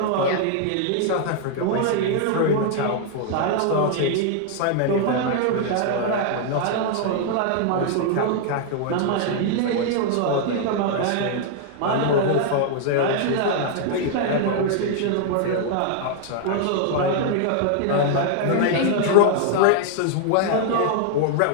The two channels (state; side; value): different; both; correlation 0.00